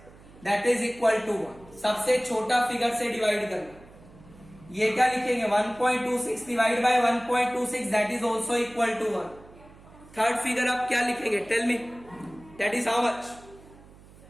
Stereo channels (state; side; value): noise; right; hum, 23 dB below the sound